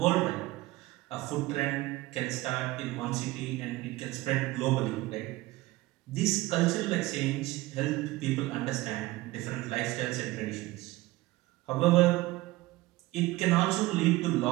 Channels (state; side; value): quieter; left; 19.0 dB